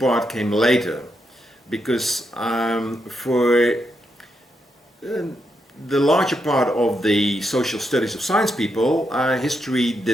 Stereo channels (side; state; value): both; normal; correlation 0.82